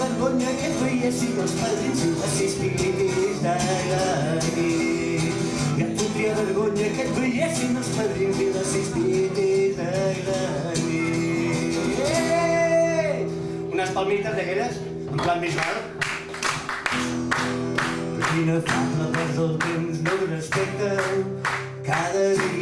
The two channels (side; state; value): both; identical; correlation 1.00